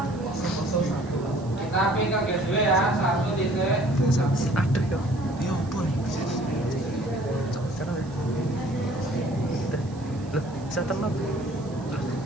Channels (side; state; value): right; noise; hiss, 25 dB below the sound